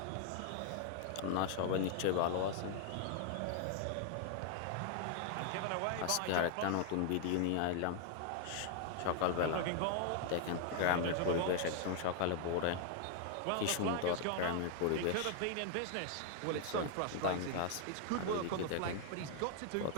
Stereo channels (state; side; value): different; both; correlation 0.00